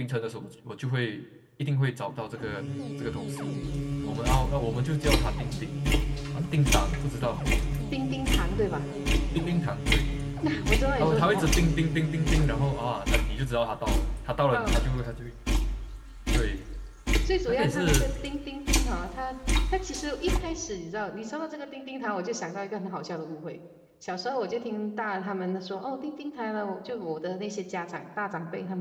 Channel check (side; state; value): both; identical; correlation 1.00